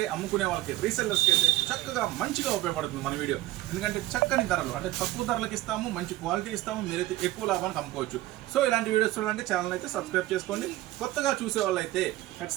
అమ్ముకునే వాళ్ళకి, రీసెల్లర్స్కి అయితే చక్కగా మంచిగా ఉపయోగపడుతుంది మన వీడియో. ఎందుకంటే చక్కని ధరలు, అంటే తక్కువ ధరలకు ఇస్తాము, మంచి క్వాలిటీ ఇస్తాము, మీరైతే ఎక్కువ లాభానికి అమ్ముకోవచ్చు. సో ఇలాంటి వీడియోస్ చూడాలంటే ఛానల్ అయితే సబ్స్క్రైబ్ చేసుకోండి. కొత్తగా చూసే వాళ్ళు అయితే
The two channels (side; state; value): left; quieter; 16.9 dB